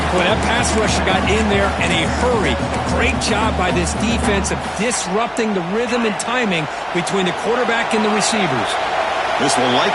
Boy, that pass rusher got in there in a hurry. Great job by this defense of disrupting the rhythm and timing between the quarterback and the receivers. This will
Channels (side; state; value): both; identical; correlation 1.00